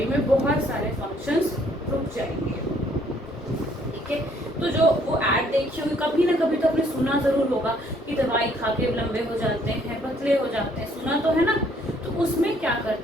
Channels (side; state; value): both; normal; correlation 0.64